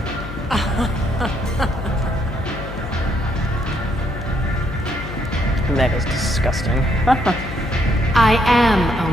That is disgusting. I am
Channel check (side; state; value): left; noise; hum, 10 dB below the sound